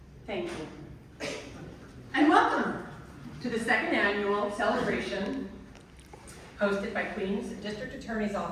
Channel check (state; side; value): identical; both; correlation 1.00